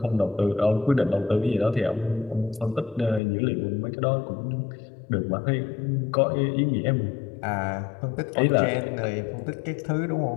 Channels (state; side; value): drops out; right; at 3.2 s